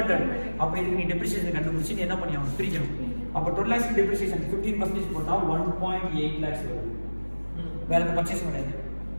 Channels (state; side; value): inverted; both; correlation -1.00